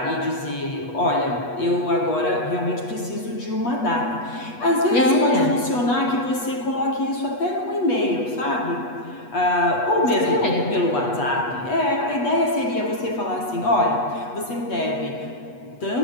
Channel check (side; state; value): right; late; 8.2 ms